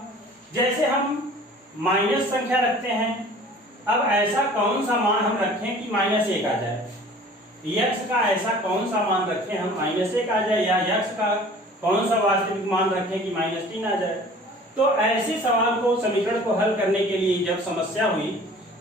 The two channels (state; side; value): normal; both; correlation 0.47